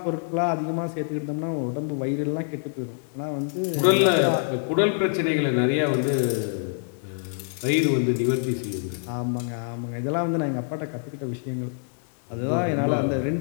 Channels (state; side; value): silent; right; 61 dB below the other